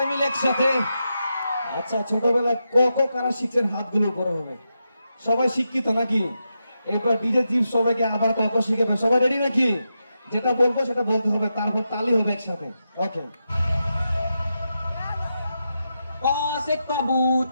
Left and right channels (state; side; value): inverted; both; correlation -0.87